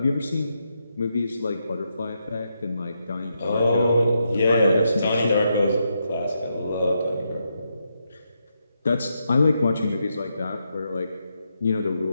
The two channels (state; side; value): inverted; both; correlation -0.82